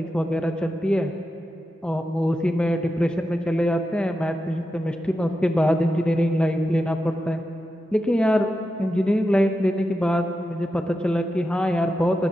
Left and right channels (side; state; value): both; normal; correlation 0.89